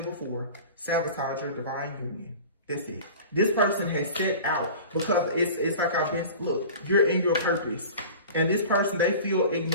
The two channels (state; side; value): inverted; both; correlation -0.39